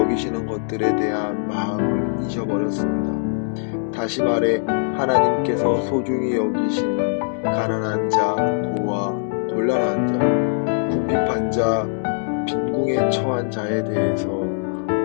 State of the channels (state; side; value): silent; right; digital silence